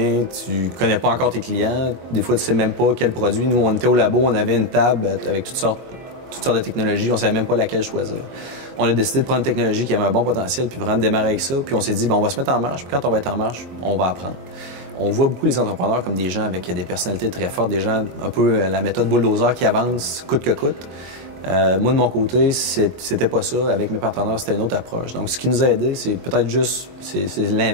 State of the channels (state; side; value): late; left; 22 ms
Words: tu connais pas encore tes clients, des fois tu sais même pas quel produit. Nous, on était au labo, on avait une table avec toutes sortes de technologies, on savait même pas laquelle choisir. On a décidé de prendre une technologie qui avait un bon potentiel, puis vraiment de démarrer avec ça, puis on s'est dit, bon, on va se mettre en marche, puis quand on va être en marche, on va apprendre. On voit beaucoup les entrepreneurs comme des gens avec des personnalités très fortes, des gens un peu la méthode bulldozer qui avance coûte que coûte. Moi, de mon côté, c'était pas ça. Avec mes partenaires, c'était une autre approche. Donc, ce qui nous a aidé, c'est peut-être juste, c'est